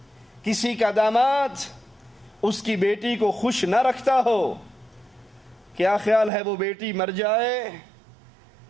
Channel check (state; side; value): drops out; left; at 6.3 s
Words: کسی کا داماد اس کی بیٹی کو خوش نہ رکھتا ہو، کیا خیال ہے وہ بیٹی مر جائے